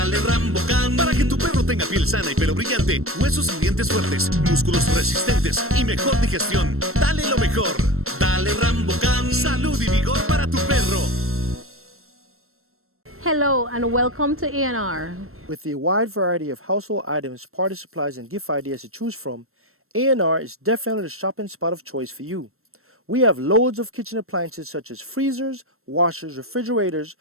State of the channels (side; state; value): left; late; 0.62 ms